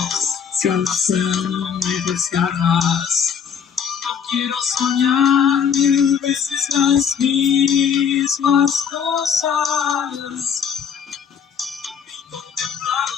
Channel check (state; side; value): quieter; right; 7.3 dB